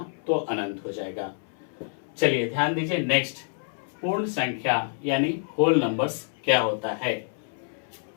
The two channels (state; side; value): silent; right; 60 dB below the other